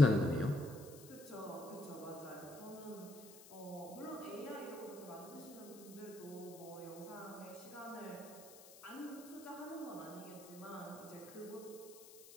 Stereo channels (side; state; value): left; noise; hiss, 17 dB below the sound